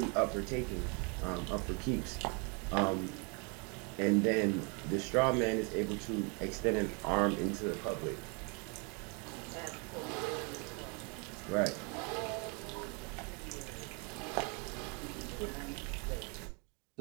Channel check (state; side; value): quieter; left; 33.8 dB